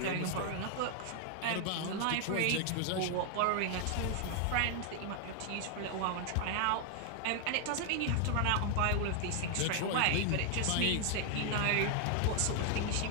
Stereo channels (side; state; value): both; different; correlation 0.00